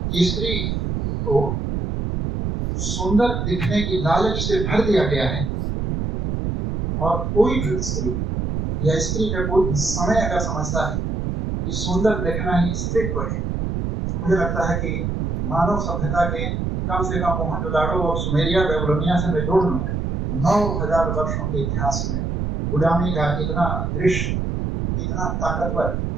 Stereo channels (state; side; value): noise; right; rumble, 1 dB below the sound